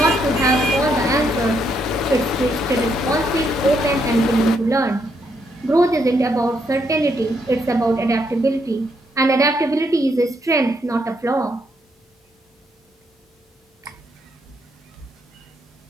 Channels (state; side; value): normal; both; correlation 0.75